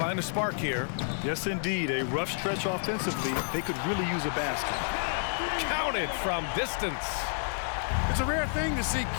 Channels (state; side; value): silent; right; digital silence